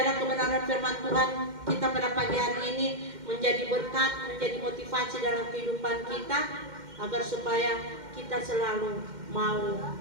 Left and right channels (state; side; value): late; left; 2.1 ms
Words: kebenaran firman Tuhan kita pada pagi hari ini menjadi berkat, menjadi motivasi dalam kehidupan kita, agar supaya kita selalu mau